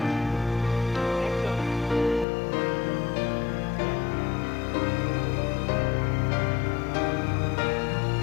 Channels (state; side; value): drops out; right; at 2.2 s